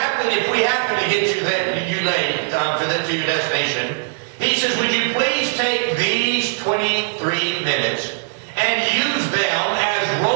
we happen to get you late to your destination, he says, would you please take these 23 minutes and use them as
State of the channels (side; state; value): left; silent; digital silence